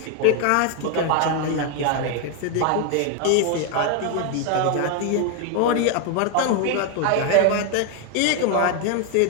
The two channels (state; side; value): different; both; correlation 0.01